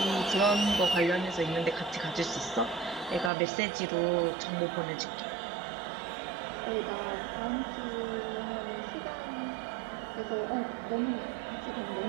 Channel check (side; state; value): left; drops out; at 3.3 s